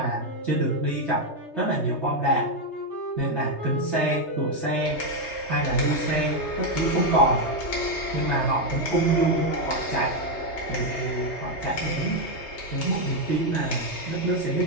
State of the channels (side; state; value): right; late; 3.3 ms